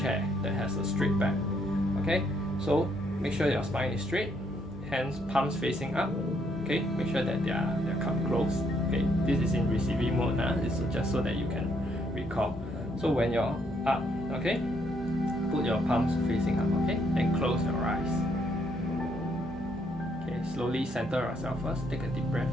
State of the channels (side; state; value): both; normal; correlation 0.72